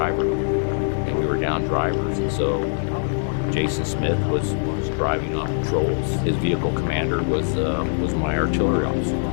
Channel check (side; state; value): right; silent; digital silence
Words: and we were down drivers, and so Jason Smith was driving on patrols. His vehicle commander was my artillery officer.